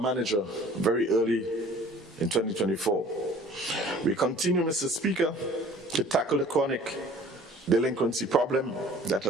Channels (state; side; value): normal; both; correlation 0.50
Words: manager very early in 2024. We continue, Mr. Speaker, to tackle the chronic delinquency problem that